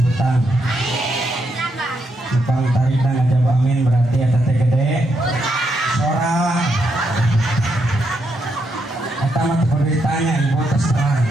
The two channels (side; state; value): both; normal; correlation 0.79